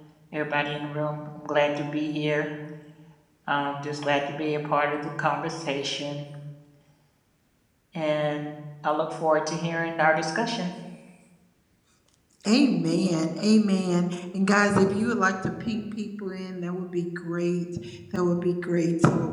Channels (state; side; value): identical; both; correlation 1.00